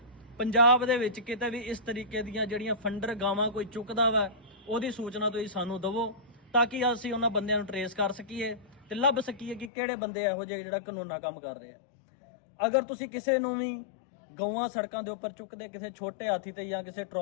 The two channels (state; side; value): drops out; right; at 9.7 s